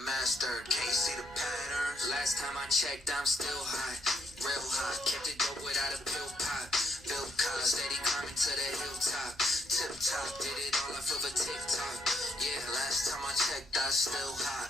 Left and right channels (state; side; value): normal; both; correlation 0.75